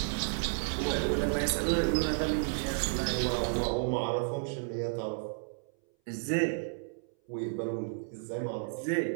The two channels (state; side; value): silent; left; 56 dB below the other